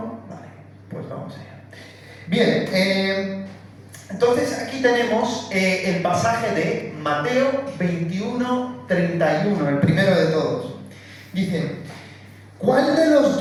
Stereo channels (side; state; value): both; identical; correlation 1.00